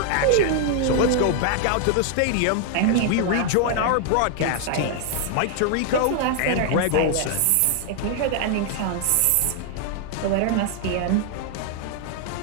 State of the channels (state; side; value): different; both; correlation 0.00